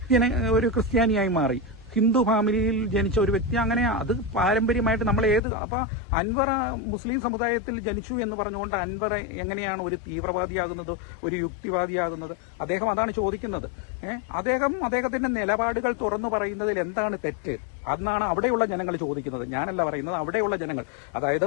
ഒരു ക്രിസ്ത്യാനിയായി മാറി. ഹിന്ദു ഫാമിലിയിൽ ജനിച്ച ഒരു വ്യക്തി, അങ്ങനെ അത് പാരമ്പര്യമായിട്ട് നമ്മൾ അപ്പൊ അൻവർ മുസ്ലിം സമുദായത്തിൽ ജനിച്ചു എന്ന് പറഞ്ഞുകൊണ്ട് അൻവർ എങ്ങനെയാണ് ഒരു തീവ്രവാദിയാകുന്നത്, ഒരു യുക്തിവാദിയാകുന്നത്? അദ്ദേഹം അതാണ് ചോദിക്കുന്നത്. അദ്ദേഹത്തിന്റെ നിലപാടുകൾ തുറന്നു പറയുന്നതിൽ എന്താണ് തെറ്റ്? അന്നാണ് അവിടെയുള്ള ജനങ്ങൾ ചോദിക്കുന്നത്. ഞാനല്ല പറയുന്നത്, അവിടെയുള്ള ജനങ്ങൾ. അതായത്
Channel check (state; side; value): drops out; right; at 5.4 s